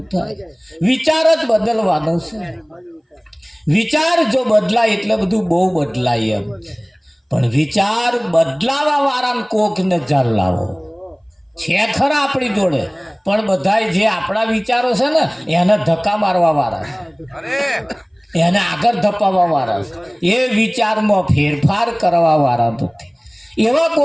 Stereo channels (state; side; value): identical; both; correlation 1.00